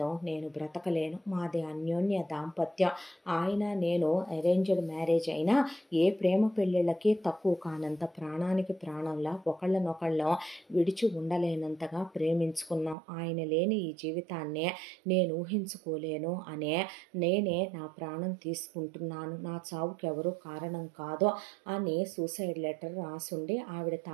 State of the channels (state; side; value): drops out; left; at 13.0 s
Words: నేను బ్రతకలేను, మాది అన్యోన్య దాంపత్యం, ఆయన నేను అరేంజ్డ్ మ్యారేజ్ అయినా ఏ ప్రేమ పెళ్ళిళ్ళకి తక్కువ కానంత ప్రాణానికి ప్రాణంలా ఒకళ్ళనొకళ్ళం విడిచి ఉండలేనంతగా ప్రేమించుకున్నాం, ఆయన లేని ఈ జీవితాన్ని నేను ఊహించుకోలేను అనే నేనే నా ప్రాణం తీసుకుంటున్నాను, నా చావుకి ఎవరు కారణం కాదు అని సూసైడ్ లెటర్ రాసుండి ఆవిడ